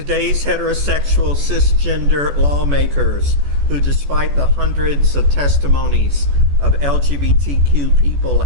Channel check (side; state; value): left; late; 14 ms